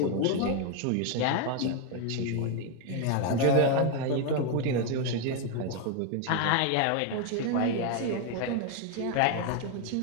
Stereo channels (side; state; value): both; different; correlation 0.01